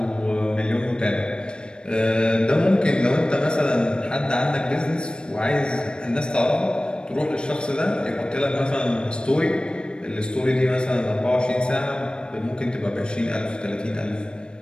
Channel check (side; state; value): right; late; 0.052 ms